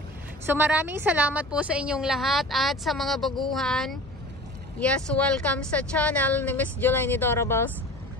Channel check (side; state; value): both; normal; correlation 0.38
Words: So maraming salamat po sa inyong lahat at sa mga baguhan. Yes, welcome sa channel ni Miss Jolaine Dorables.